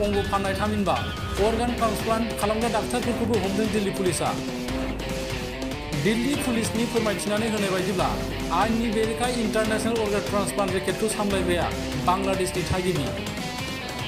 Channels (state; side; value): identical; both; correlation 1.00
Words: फाननाय थामहिनबा अर्गान ट्रान्सप्लान्ट खालामग्रा डाक्टारफोरखौबो हमदों दिल्ली पुलिसआ। दिल्ली पुलिसनि फोरमायथिनानै होनाय बायदिब्ला आयेननि बेरेखा इंटरनेशनल अर्गान ट्रान्सप्लान्ट रेकेटखौ सामलायग्राया बांलादेशनि थागिबि।